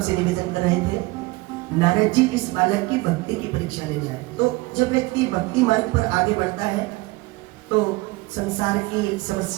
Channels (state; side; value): quieter; left; 22.3 dB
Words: निवेदन कर रहे थे, नारद जी इस बालक की भक्ति की परीक्षा लेने आए। तो जब व्यक्ति भक्ति मार्ग पर आगे बढ़ता है तो संसार की